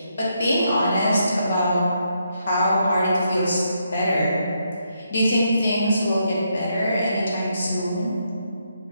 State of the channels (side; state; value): both; inverted; correlation -0.78